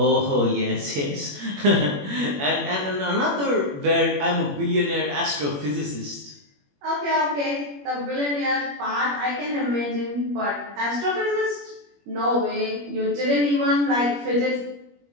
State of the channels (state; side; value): late; left; 21 ms